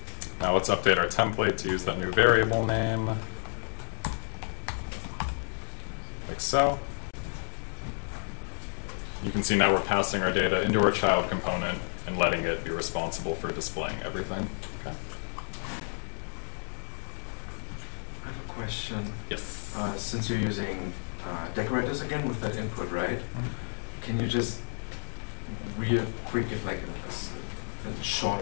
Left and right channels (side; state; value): right; silent; digital silence